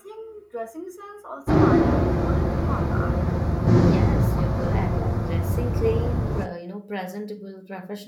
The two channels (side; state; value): both; identical; correlation 1.00